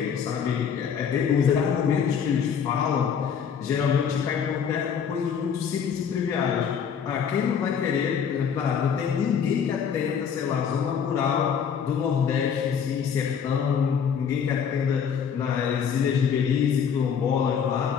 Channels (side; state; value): right; quieter; 7.3 dB